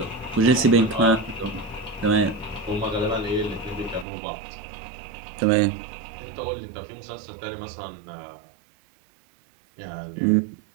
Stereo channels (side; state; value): left; drops out; at 4.0 s